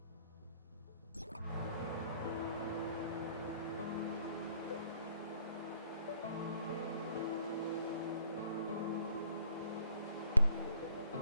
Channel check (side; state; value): both; inverted; correlation -0.60